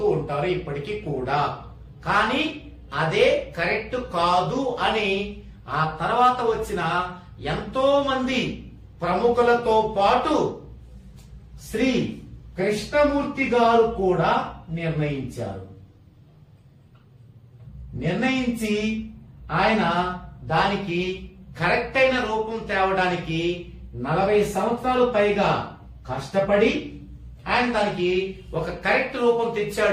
ఉంటారు ఇప్పటికీ కూడా. కానీ అదే కరెక్ట్ కాదు అని ఆ తర్వాత వచ్చిన ఎంతో మంది ప్రముఖులతో పాటు శ్రీ కృష్ణమూర్తి గారు కూడా నిర్ణయించి ఆయన దానికి కరెక్ట్ అయిన రూపం తేవడానికి 40 సంవత్సరాలు పైగా కష్టపడి ఆయన దానికి ఒక కరెక్ట్ రూపం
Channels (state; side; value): identical; both; correlation 1.00